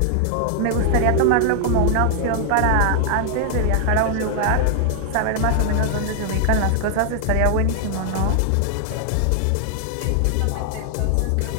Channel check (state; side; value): different; both; correlation 0.00